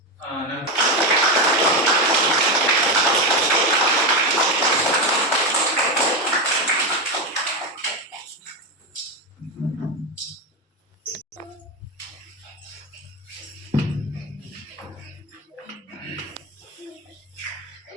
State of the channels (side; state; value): both; normal; correlation 0.12